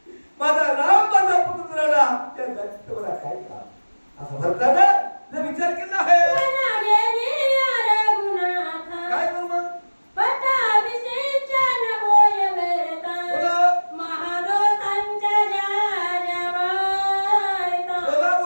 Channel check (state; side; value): inverted; both; correlation -1.00